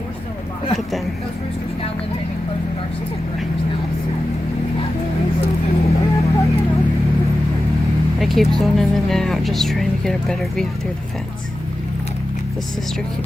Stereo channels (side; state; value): both; normal; correlation 0.93